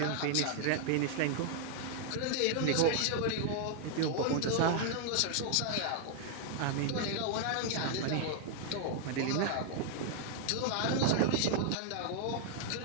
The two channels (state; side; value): different; both; correlation 0.00